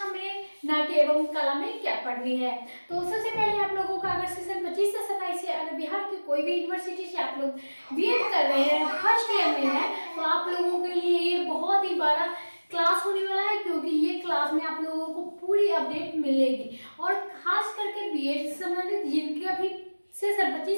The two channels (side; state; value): both; inverted; correlation -1.00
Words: में नाट्य एवं कला में क्या पढ़नी है। तो सबसे पहले आप लोगों का अगर सेशन 25 से 27 से अगर बिहार की कोई भी यूनिवर्सिटी से आप लोग बीएड कर रहे हैं, फर्स्ट ईयर में है, तो आप लोगों के लिए ये बहुत ही बड़ा क्लास होने वाला है, क्योंकि ये क्लास में आप लोगों को पूरी अपडेट मिलेगी। और खास करके बीएड से संबंधित जिनके अभी सेशन 25